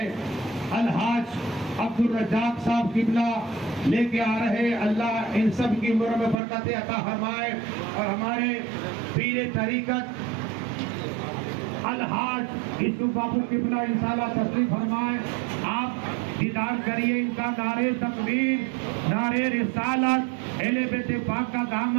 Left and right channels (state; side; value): drops out; left; at 6.4 s